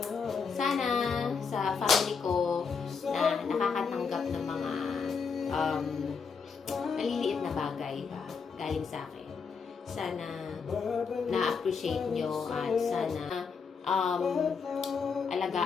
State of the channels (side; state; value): right; quieter; 5.6 dB